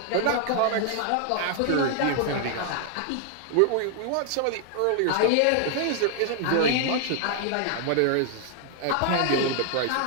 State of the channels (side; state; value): both; different; correlation 0.00